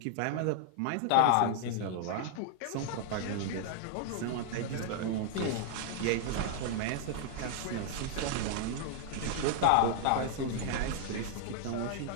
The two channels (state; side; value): different; both; correlation 0.00